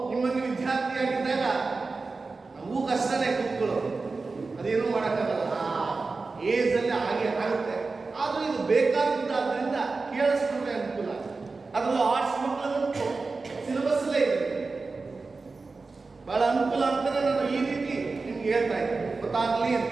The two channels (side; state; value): left; quieter; 4.0 dB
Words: ನಿಮ್ಮನ್ನು ವಿದ್ಯಾರ್ಥಿಯಾಗಿದ್ದಾಗ ನಮಗೂ ಕಷ್ಟನೇ ಕೂತ್ಕೊಳ್ಳೋದು, ಅದೇನು ಮಾಡೋಕ್ಕಾಗಲ್ಲ, ಏಜಲ್ಲಿ ಹಾಗೆ ಆಗುತ್ತೆ. ಆದರೂ ಇದು ಬೇಕಾಗಿದ್ದಾದ್ರಿಂದ ಕೇಳಿಸ್ಕೊಂಡ್ರೆ ಅನುಕೂಲ. ಅದರಲ್ಲೂ ಆರ್ಟ್ಸ್ ಮಕ್ಕಳಂತೂ ಸಿಲೆಬಸ್ಸಲ್ಲೇ ಇದೆ, ಬಹಳ ಅನುಕೂಲ ಅಂತಾನೆ ನಾನು ಈ ರೀತಿ ನಿಮ್ಗೆ ಹೇಳ್ತಾ ಇದ್ದೀನಿ, ಗೊತ್ತಾಗ್ಲಿ ಅಂತ.